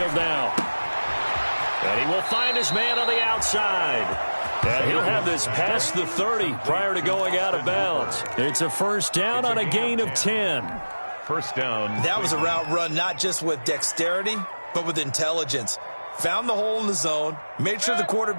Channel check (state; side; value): inverted; both; correlation -1.00